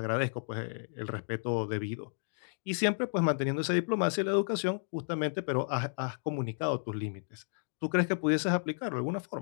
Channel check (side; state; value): right; silent; digital silence